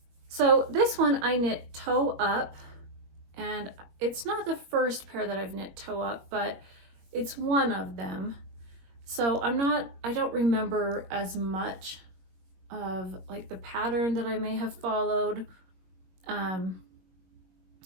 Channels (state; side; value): late; left; 21 ms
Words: So this one I knit toe up, and it's not the first pair that I've knit toe up, but it's one of them. So I don't remember as much of like the pattern that I may have followed.